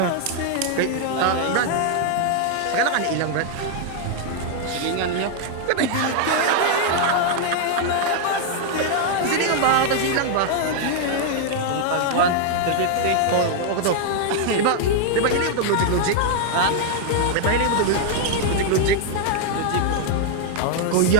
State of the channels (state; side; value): different; both; correlation 0.00